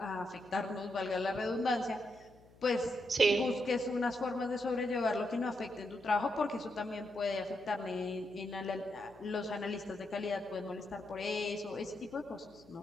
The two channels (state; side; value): noise; left; hum, 25 dB below the sound